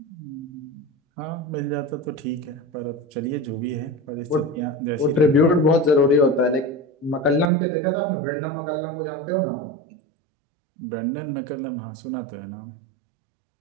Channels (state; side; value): drops out; left; at 7.5 s